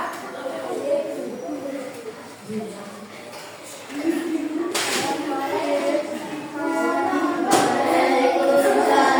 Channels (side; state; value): both; identical; correlation 1.00